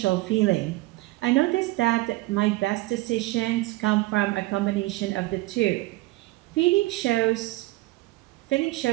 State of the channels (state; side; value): quieter; left; 20.1 dB